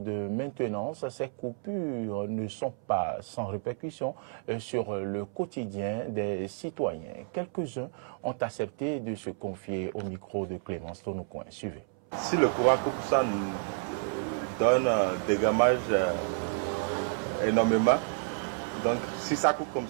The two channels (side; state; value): left; silent; 57 dB below the other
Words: de maintenance, ces coupures ne sont pas sans répercussion sur le quotidien des citoyens. Quelques-uns ont accepté de se confier au micro de Clémence Tonocoin. Suivez. Si le courant coupe, ça nous donne des dommages énormément. Donc si ça coupe comme